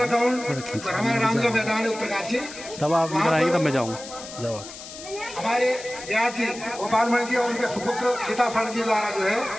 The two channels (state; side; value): noise; left; hiss, 13 dB below the sound